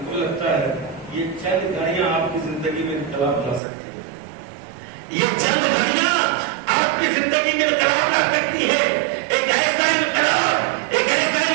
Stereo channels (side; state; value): left; drops out; at 3.6 s